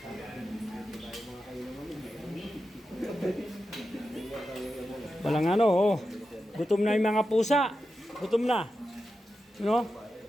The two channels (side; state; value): both; normal; correlation 0.90